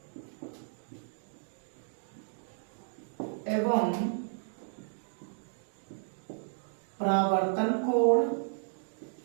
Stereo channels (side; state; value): left; silent; digital silence